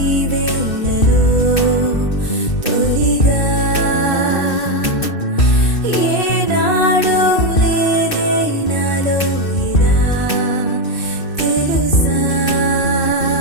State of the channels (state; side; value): late; right; 2.6 ms